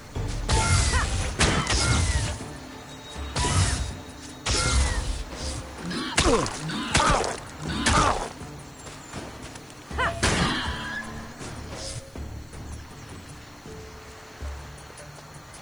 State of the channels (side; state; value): left; noise; hiss, 29 dB below the sound